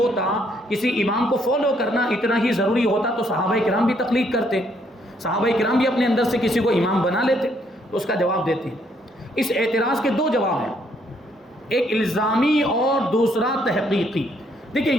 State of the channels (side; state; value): both; normal; correlation 0.70